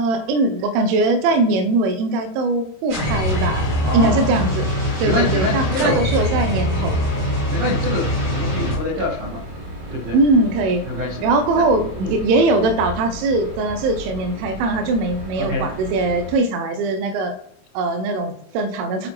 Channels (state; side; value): late; left; 26 ms